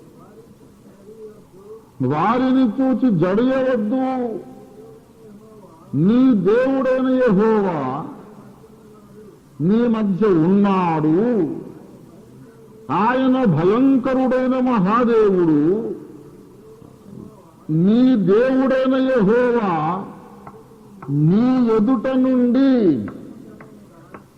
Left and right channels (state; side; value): identical; both; correlation 1.00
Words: వారిని చూచి జడియవద్దు, నీ దేవుడైన యెహోవా నీ మధ్య ఉన్నాడు, ఆయన భయంకరుడైన మహాదేవుడు. నీ దేవుడైన యెహోవా నీ ఎదుట నుండి